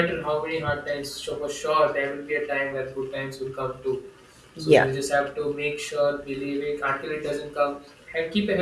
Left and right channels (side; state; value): both; identical; correlation 1.00